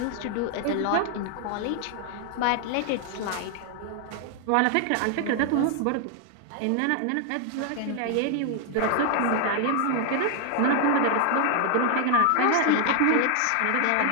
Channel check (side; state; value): both; different; correlation 0.00